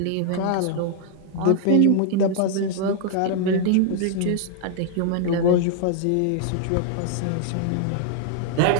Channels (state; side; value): different; both; correlation -0.01